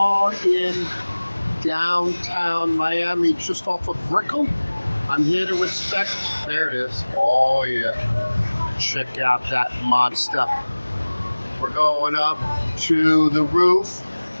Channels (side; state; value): both; inverted; correlation -1.00